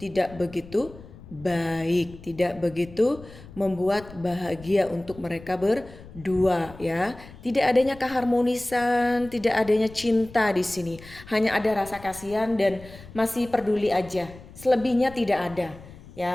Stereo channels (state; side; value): noise; left; rumble, 18 dB below the sound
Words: begitu baik, tidak begitu membuat bahagia untuk mereka berdua ya. Tidak adanya keharmonisan, tidak adanya cinta di sini. Hanya ada rasa kasihan dan masih peduli aja. Selebihnya tidak ada